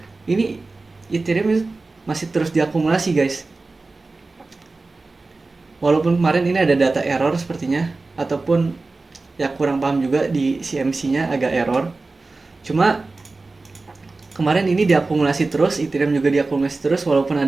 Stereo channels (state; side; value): quieter; left; 3.5 dB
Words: ini Ethereum itu masih terus diakumulasi, guys. Walaupun kemarin ini ada data error sepertinya, ataupun ya kurang paham juga di CMC-nya agak error. Cuma kemarin ini diakumulasi terus, Ethereum juga diakumulasi terus walaupun